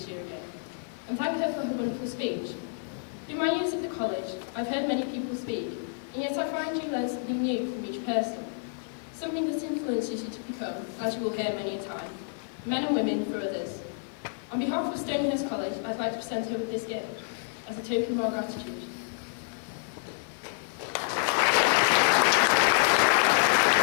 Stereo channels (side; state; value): right; silent; 59 dB below the other